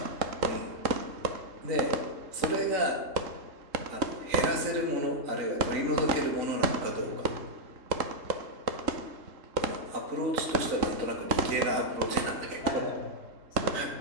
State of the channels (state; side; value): late; left; 3.7 ms